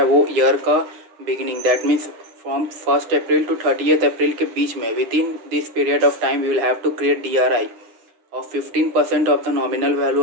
है वो ईयर का beginning, that means from 1 April to 30 April के बीच में, within this period of time we will have to create DRI of 15% of the nominal value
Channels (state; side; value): late; left; 9.6 ms